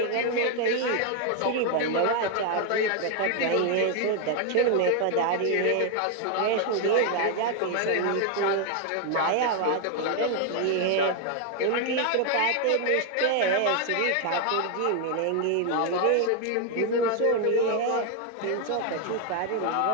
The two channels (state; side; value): different; both; correlation 0.01